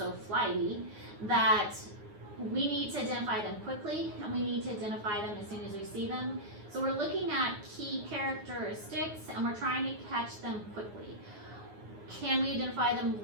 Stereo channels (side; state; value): left; late; 9.7 ms